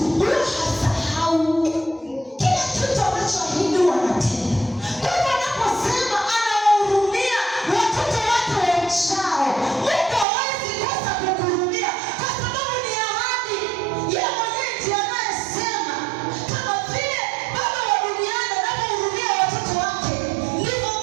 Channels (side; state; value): left; drops out; at 10.2 s